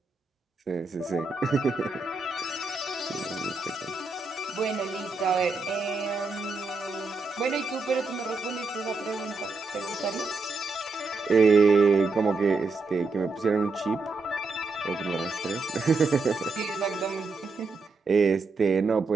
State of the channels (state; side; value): quieter; left; 3.8 dB